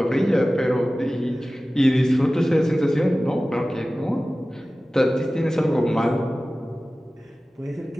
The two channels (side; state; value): both; normal; correlation 0.96